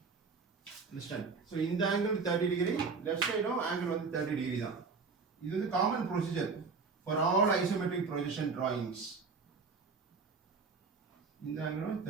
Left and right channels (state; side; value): quieter; left; 4.7 dB